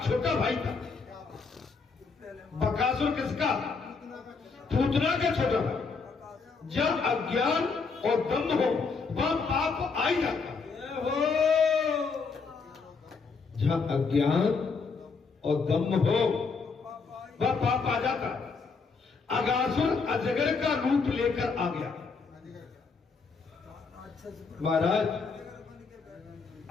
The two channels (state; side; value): quieter; right; 4.8 dB